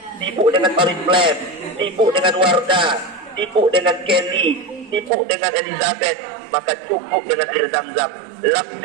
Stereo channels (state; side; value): drops out; left; at 5.1 s